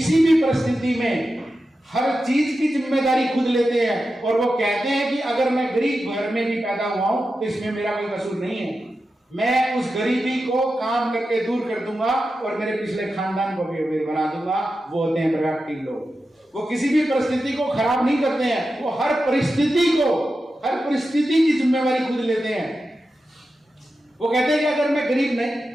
भी परिस्थिति में हर चीज की जिम्मेदारी खुद लेते हैं और वो कहते हैं कि अगर मैं गरीब घर में भी पैदा हुआ हूं तो इसमें मेरा कोई कसूर नहीं है, मैं उस गरीबी को काम करके दूर कर दूंगा और मेरे पिछले खानदान को भी बना दूंगा। वो होते हैं प्रोएक्टिव लोग। वो किसी भी परिस्थिति को खराब नहीं करते हैं, वो हर परिस्थिति की जिम्मेवारी खुद लेते हैं। वो कहते हैं कि अगर मैं गरीब नहीं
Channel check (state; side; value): normal; both; correlation 0.91